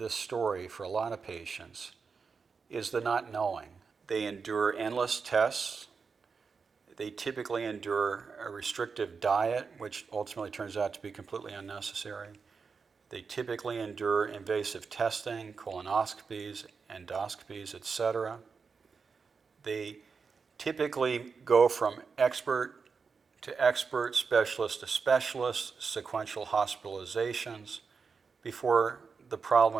story for a lot of patients is the not knowing. They endure endless tests. They typically endure a restrictive diet, which ultimately turns out to be completely unnecessary. They typically endure invasive testing, colonoscopies, endoscopies, etc. They typically go from expert to expert, specialist to specialist, sequential hospitalizations, before the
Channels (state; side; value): quieter; left; 5.2 dB